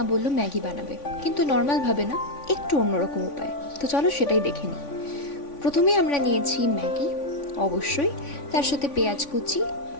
বলল ম্যাগি বানাবে, কিন্তু নর্মালভাবে না, একটু অন্যরকম উপায়। তো চলো সেটাই দেখে নিই। প্রথমেই আমরা নিয়েছি ম্যাগি, অবশ্যই তার সাথে পেঁয়াজ কুচি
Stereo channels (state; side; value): late; right; 3.5 ms